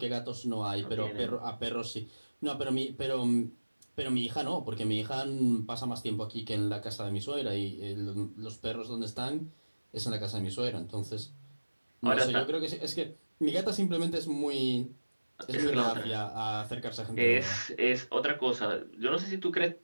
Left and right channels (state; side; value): inverted; both; correlation -1.00